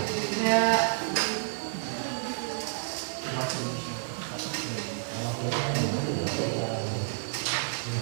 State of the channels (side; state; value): left; silent; 58 dB below the other